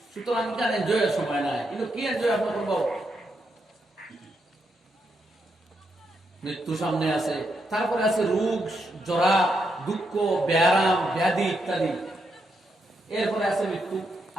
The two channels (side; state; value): both; normal; correlation 0.81